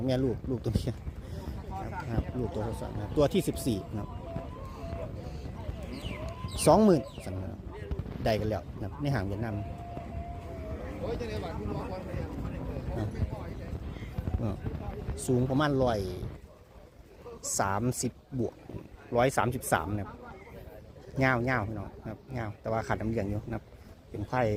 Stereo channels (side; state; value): both; identical; correlation 1.00